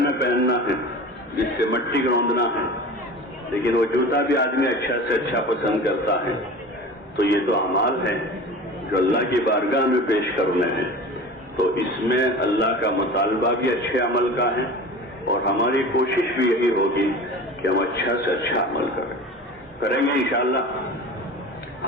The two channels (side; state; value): both; normal; correlation 0.35